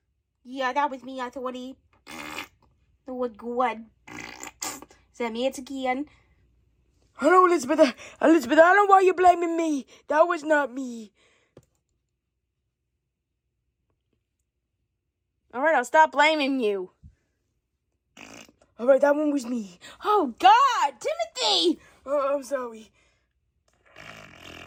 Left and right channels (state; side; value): identical; both; correlation 1.00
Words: Yeah, that was me, Authority. That was good. Is that me? It's again. Hello, Elizabeth. Elizabeth, I don't know why you're blaming me. That was not me. All right, I'll stop blaming you. All right, that one was me. Oh, God, Timothy! Oh, I'm sorry.